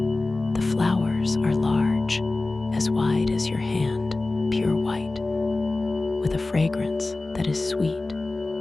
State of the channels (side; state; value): right; quieter; 3.2 dB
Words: The flowers are large, as wide as your hand, pure white, with a fragrance that is sweet